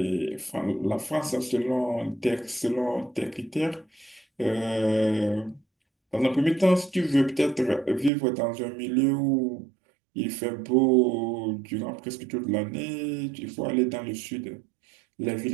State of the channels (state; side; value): drops out; left; at 8.1 s